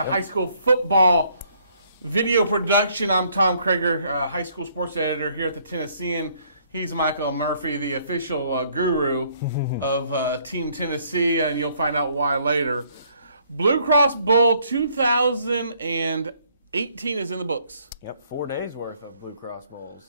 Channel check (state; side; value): inverted; both; correlation -0.66